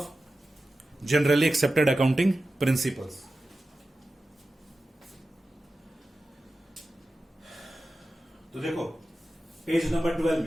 generally accepted accounting principles. तो देखो पेज नंबर 12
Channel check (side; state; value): both; normal; correlation 0.93